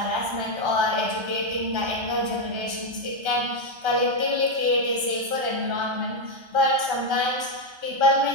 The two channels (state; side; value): late; left; 1.3 ms